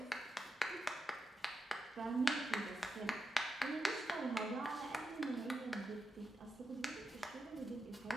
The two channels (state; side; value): normal; both; correlation 0.87